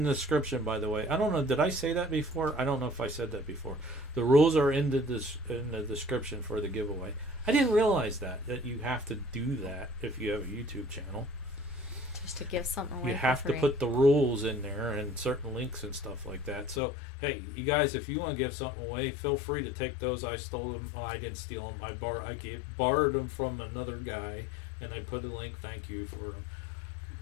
the description, by the way. I don't know, did I say that before? I don't know if I said that before. The rules are in the description for the giveaway. I didn't realize that you have to do that if you have a YouTube channel. Just to give something away. You have to put the rules in there and certain links and stuff like that. So, hey, you guys, if you want to give something away, feel free to take those. I stole them. Oh, I didn't steal them. I borrowed them from another guy, and I put a link. Thank you for them.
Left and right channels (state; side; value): drops out; right; at 16.8 s